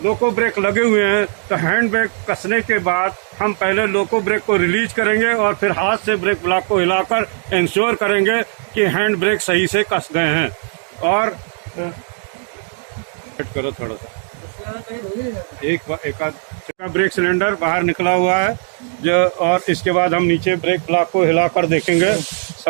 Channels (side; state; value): left; silent; 56 dB below the other